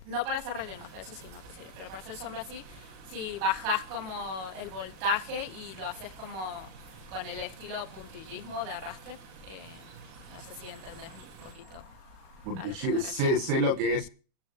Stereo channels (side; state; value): left; late; 37 ms